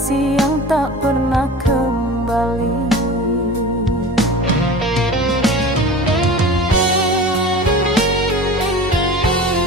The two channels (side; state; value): both; normal; correlation 0.36